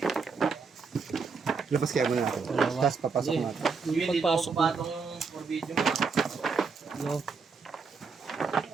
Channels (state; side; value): quieter; left; 5.0 dB